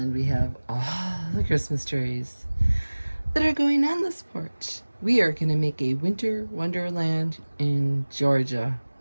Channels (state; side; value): inverted; both; correlation -1.00